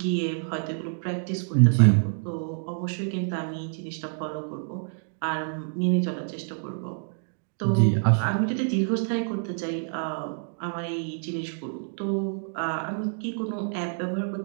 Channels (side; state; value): left; silent; digital silence